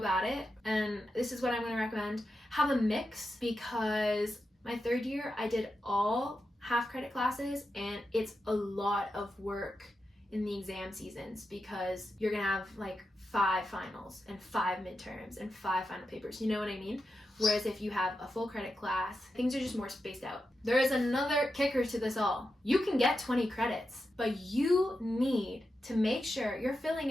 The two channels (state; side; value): normal; both; correlation 0.88